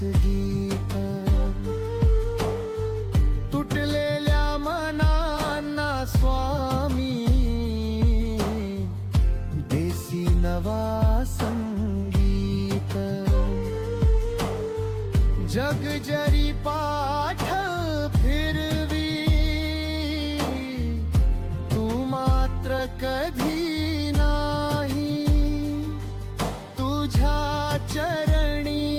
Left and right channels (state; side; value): identical; both; correlation 1.00